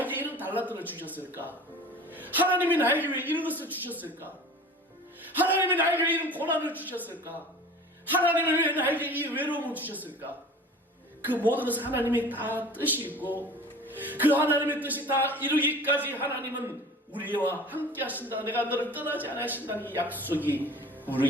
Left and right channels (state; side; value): normal; both; correlation 0.41